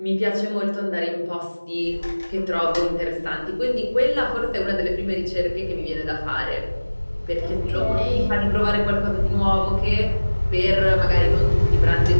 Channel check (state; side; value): inverted; both; correlation -1.00